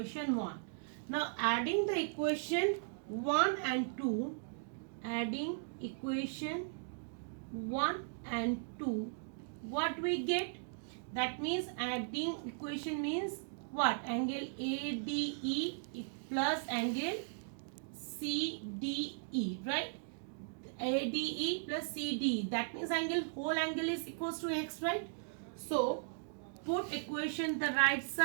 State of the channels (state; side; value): silent; left; digital silence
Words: 1. Now adding the equation 1 and 2, adding equation 1 and 2, what we get? That means adding equation means what? Angle ADE plus angle CDE, right? ADE plus CDE, that means angle, whole angle is equals to x, right? So put equation the right